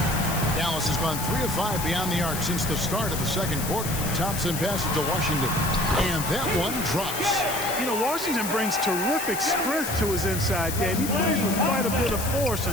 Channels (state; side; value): noise; left; hiss, 6 dB below the sound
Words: Dallas has gone 3 of 5 beyond the arc since the start of the second quarter. Thompson passes to Washington, and that one drops. You know, Washington brings terrific strength to his inside game. He plays with quite a bit of force